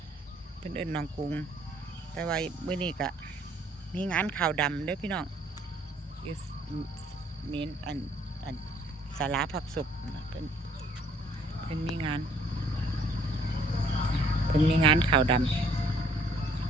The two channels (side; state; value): both; normal; correlation 0.61